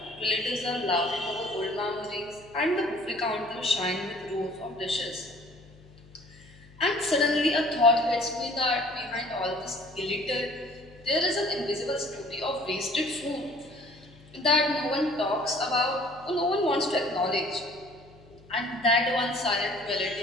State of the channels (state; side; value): noise; left; hum, 24 dB below the sound